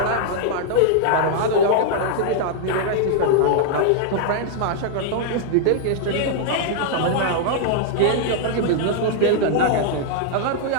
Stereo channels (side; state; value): both; different; correlation -0.01